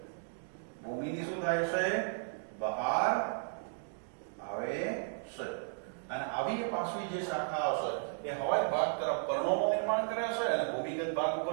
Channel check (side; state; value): left; silent; digital silence